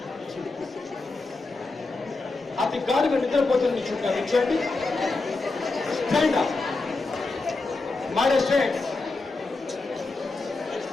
అతి గాఢంగా నిద్రపోతున్న నుంచోండి. Stand up, my dear students,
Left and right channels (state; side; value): quieter; right; 3.5 dB